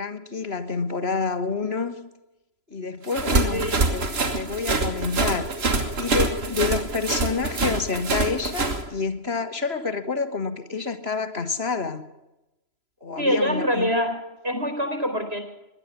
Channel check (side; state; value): left; late; 3.0 ms